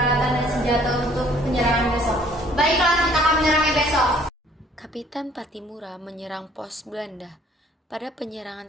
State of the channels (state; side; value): normal; both; correlation 0.58